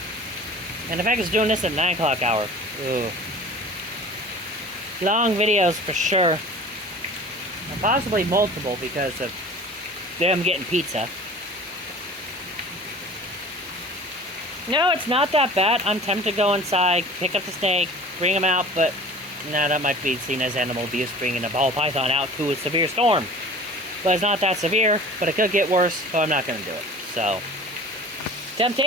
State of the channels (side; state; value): both; normal; correlation 0.42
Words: And the fact it's doing this at 9 o'clock hour. Ooh. Long videos for sure. And possibly multiple because of them getting pizza. No, it's not that bad. I'm tempted to go inside, pick up the snake, bring him out, but nah, that might be seen as animal abuse, bringing a ball python out to a severe storm. But it's not that severe, but it could get worse, so I'm not going to do it. So,